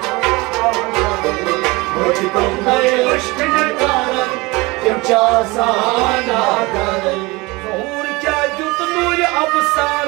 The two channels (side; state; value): left; quieter; 23.5 dB